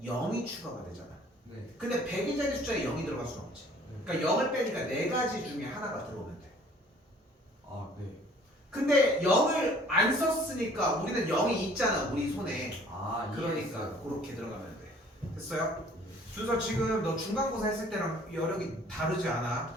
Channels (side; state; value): both; normal; correlation 0.54